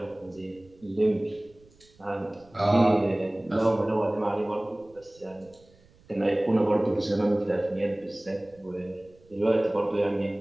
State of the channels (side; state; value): right; noise; rumble, 29 dB below the sound